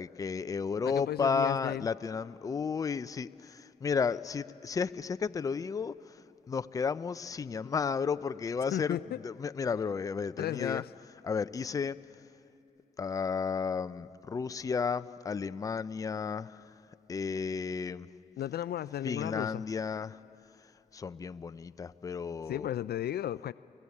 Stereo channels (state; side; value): quieter; right; 5.9 dB